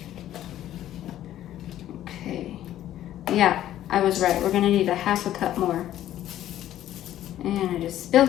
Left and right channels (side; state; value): right; quieter; 12.5 dB